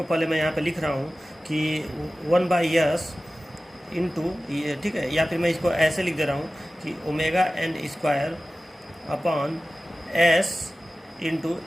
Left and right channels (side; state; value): both; normal; correlation 0.96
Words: पहले मैं यहाँ पे लिख रहा हूँ कि 1/s इंटू ये। ठीक है, या फिर मैं इसको ऐसे लिख दे रहा हूँ कि omega N square upon s into